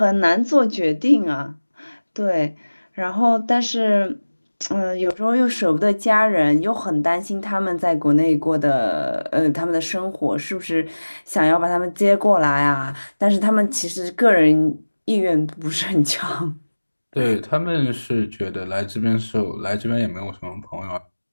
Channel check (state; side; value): inverted; both; correlation -1.00